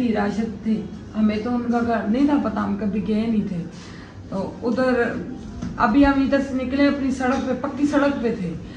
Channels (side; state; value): both; identical; correlation 1.00